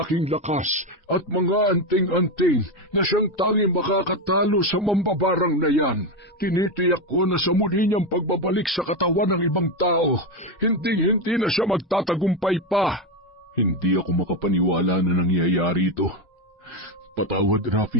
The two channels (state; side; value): normal; both; correlation 0.12